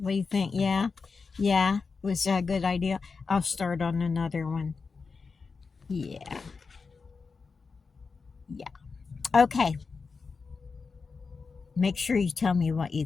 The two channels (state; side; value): quieter; right; 4.8 dB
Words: do you think? Yeah. Was that a good idea? I'll start on another one. Yeah. Okay. Make sure you tell me what you